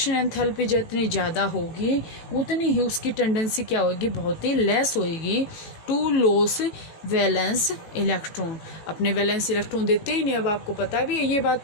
एंथैल्पी जितनी ज़्यादा होगी उतनी ही उसकी टेंडेंसी क्या होगी, बहुत ही लेस होएगी टू लॉस वैलेंस इलेक्ट्रॉन। अपने वैलेंस इलेक्ट्रॉन देते ही नहीं। अब आपको पता भी है ये बात,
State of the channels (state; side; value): late; right; 18 ms